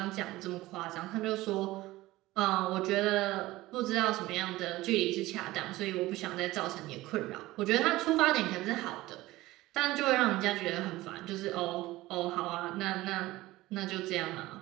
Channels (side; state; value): left; quieter; 18.0 dB